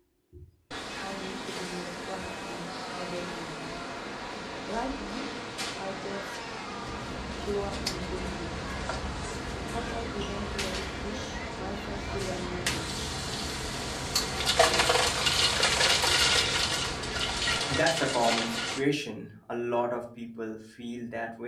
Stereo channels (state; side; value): identical; both; correlation 1.00